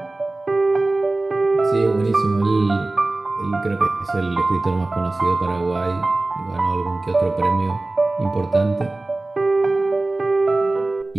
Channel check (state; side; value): quieter; left; 3.0 dB